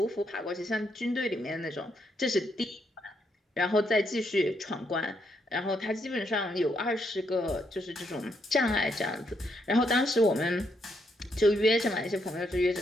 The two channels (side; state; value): both; normal; correlation 0.76